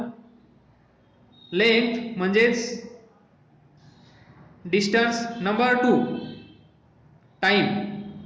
length म्हणजेच डिस्टन्स, नंबर 2 टाइम.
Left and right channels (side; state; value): both; identical; correlation 1.00